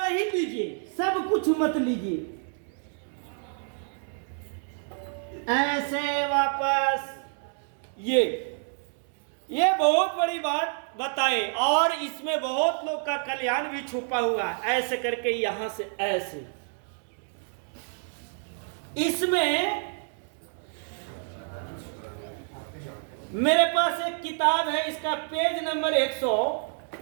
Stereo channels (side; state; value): left; silent; 59 dB below the other